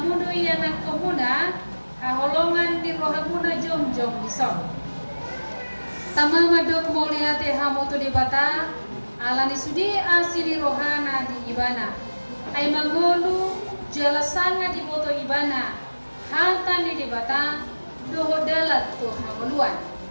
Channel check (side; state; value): both; inverted; correlation -1.00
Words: doi anak komuna haholongan di rohamuna jom-jom disong. Tama madok moliate hamu tu debata alani sudi asini rohana di ibana. Ay mangolu jalasanga di boto ibana. Halta ni debata doho dalat tu hamuluan.